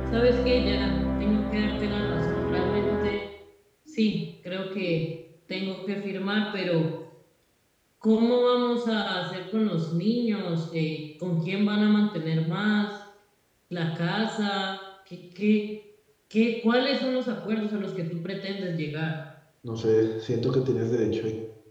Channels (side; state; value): both; identical; correlation 1.00